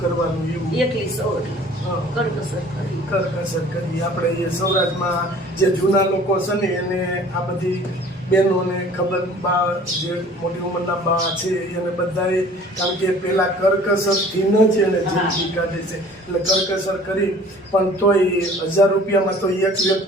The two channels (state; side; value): normal; both; correlation 0.49